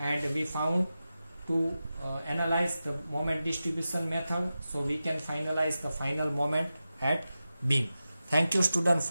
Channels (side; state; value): both; inverted; correlation -0.93